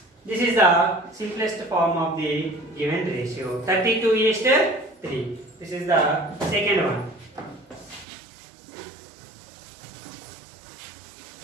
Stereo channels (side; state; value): left; drops out; at 8.1 s